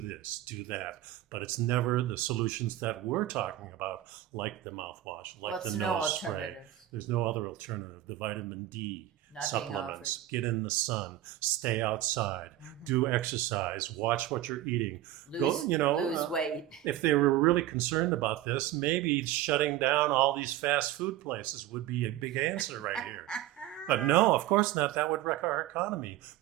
this, do that. But it's never the solutions that we're talking about, like the mouthwash, like the nose spray. Alternative. There's no other alternative. The vitamin D not being offered. Supplements, get in the sun, stay outside, do exercise, watch what you're eating. Lose weight. If they were really concerned about this, maybe shutting down all these fast food places would be a big answer right here. But no, of course not. That would wreck our economy.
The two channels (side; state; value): left; quieter; 13.8 dB